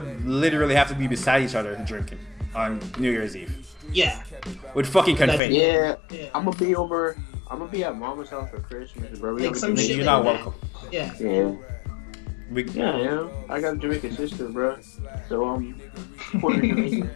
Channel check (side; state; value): right; drops out; at 5.4 s